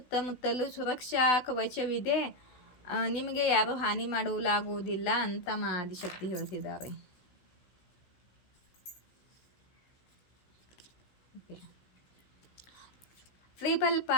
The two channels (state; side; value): late; right; 16 ms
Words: ಸುರಕ್ಷಾ ಕವಚವಿದೆ, ನಿಮಗೆ ಯಾರೂ ಹಾನಿ ಮಾಡಲಾಗುವುದಿಲ್ಲ ಅಂತ ಮಾ ಆದಿಶಕ್ತಿ ಹೇಳ್ತಿದ್ದಾರೆ. ಓಕೆ,